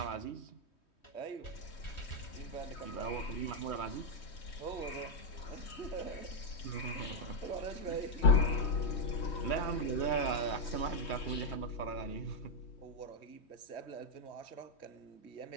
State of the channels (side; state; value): right; late; 3.1 ms